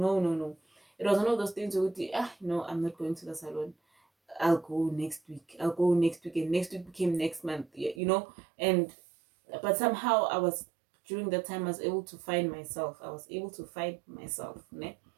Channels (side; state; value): left; drops out; at 8.0 s